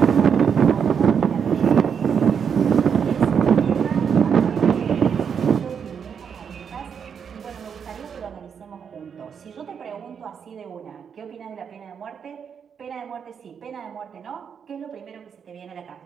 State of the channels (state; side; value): quieter; left; 7.1 dB